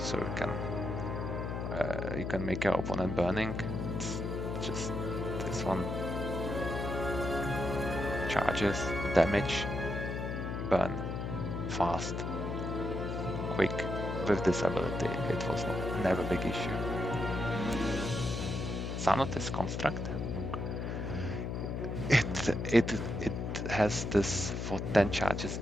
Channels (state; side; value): noise; left; hum, 3 dB below the sound